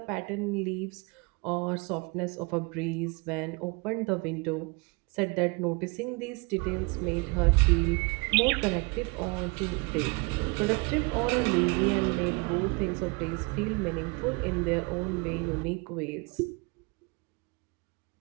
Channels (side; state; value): left; quieter; 29.3 dB